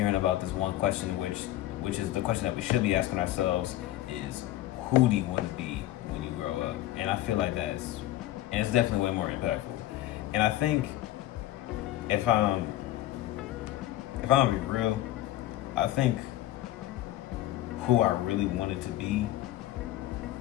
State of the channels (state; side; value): quieter; right; 14.6 dB